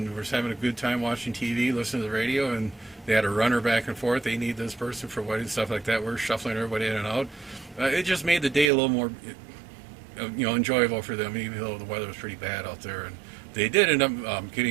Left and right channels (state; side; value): drops out; left; at 8.7 s